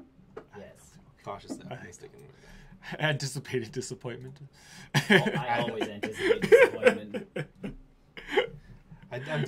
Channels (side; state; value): both; identical; correlation 1.00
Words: Cautiously optimistic. Anticipated disappointment. I always anticipate disappointment. I'm